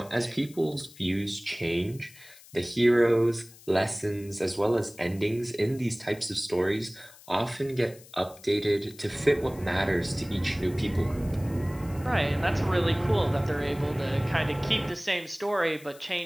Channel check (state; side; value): noise; left; hiss, 22 dB below the sound